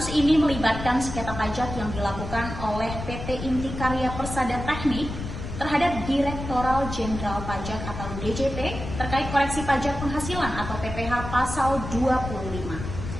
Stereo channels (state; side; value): noise; left; rumble, 8 dB below the sound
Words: ini melibatkan sengketa pajak yang dilakukan oleh PT Inti Karya Persada Teknik terhadap Direktoral Jenderal Pajak atau DJP terkait koreksi pajak penghasilan atau PPh pasal 25.